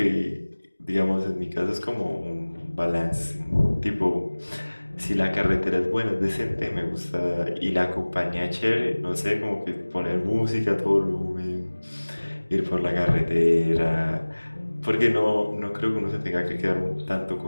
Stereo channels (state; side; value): inverted; both; correlation -1.00